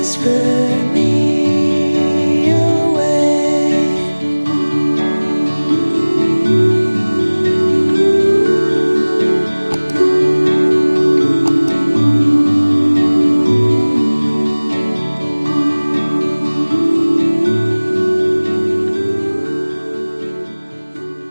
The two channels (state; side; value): inverted; both; correlation -1.00